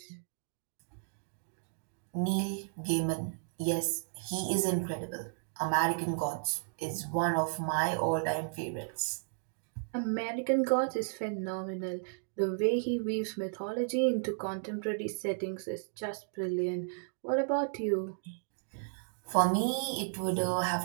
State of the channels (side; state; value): left; silent; digital silence